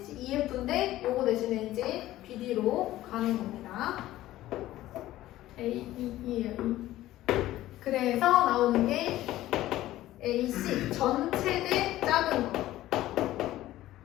EF인데 요거 대신에 이제 BD로 가는 겁니다. AE예요. 그래서 나오는 게 AC 전체 대 작은 거.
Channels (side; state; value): right; quieter; 15.1 dB